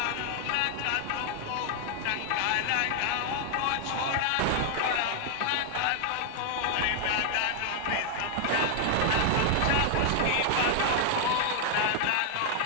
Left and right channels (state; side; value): different; both; correlation 0.00